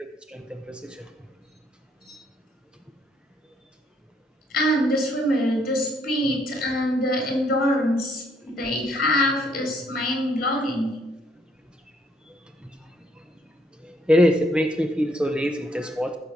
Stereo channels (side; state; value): both; normal; correlation 0.69